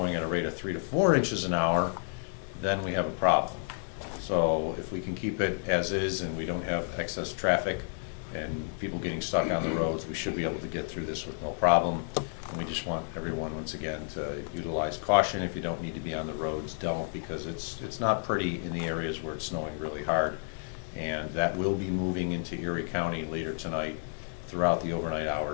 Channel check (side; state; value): right; silent; 57 dB below the other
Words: at a rate of 3 to 4 inches an hour, then we have a problem. So if we can keep it as is and we don't have excess traffic and people getting stuck on the roads, we should be able to get through this with no problem. And we just want everyone, once again, to utilize caution. If you don't need to be on the roads, don't, because it's not pretty in the areas where it's snowing really hard. And that will be moving into Erie County later tonight, throughout the overnight